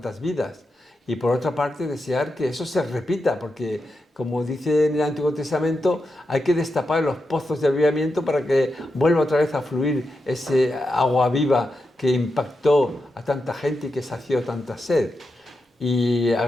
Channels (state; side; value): normal; both; correlation 0.88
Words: vidas. Y por otra parte, desear que eso se repita, porque, como dice en el Antiguo Testamento, hay que destapar los pozos de avivamiento para que vuelva otra vez a fluir ese agua viva que impactó a tanta gente y que sació tanta sed. Y